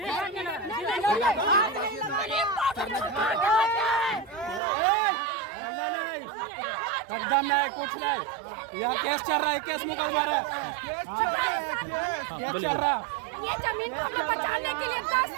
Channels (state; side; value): drops out; left; at 4.6 s